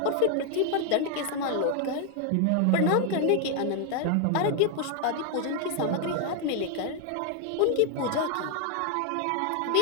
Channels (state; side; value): different; both; correlation 0.00